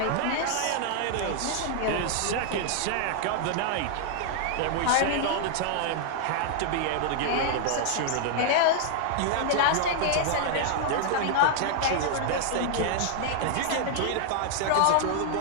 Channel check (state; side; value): different; both; correlation 0.00